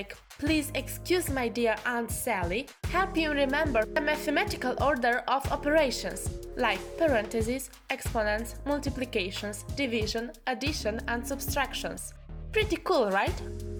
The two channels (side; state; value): both; identical; correlation 1.00